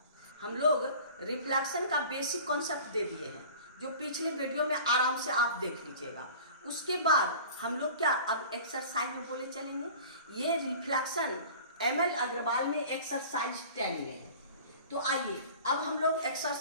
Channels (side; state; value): both; inverted; correlation -0.42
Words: हम लोग रिफ्लेक्शन का बेसिक कॉन्सेप्ट दे दिए हैं, जो पिछले वीडियो में आराम से आप देख लीजिएगा। उसके बाद हम लोग क्या अब एक्सरसाइज में बोले चलेंगे। ये रिफ्लेक्शन एमएल अग्रवाल में एक्सरसाइज 10 में है। तो आइए अब हम लोग